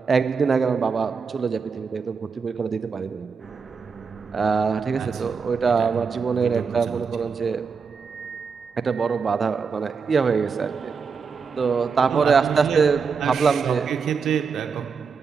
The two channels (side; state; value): left; quieter; 5.5 dB